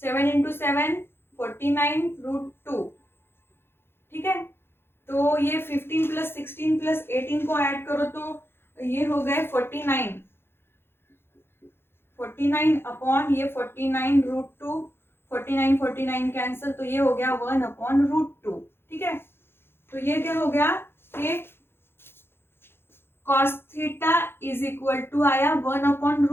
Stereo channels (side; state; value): right; late; 0.11 ms